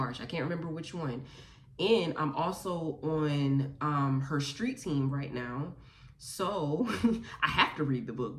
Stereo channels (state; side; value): identical; both; correlation 1.00